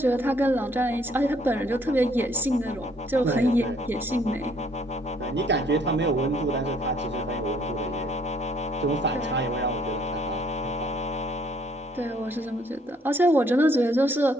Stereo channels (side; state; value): both; normal; correlation 0.64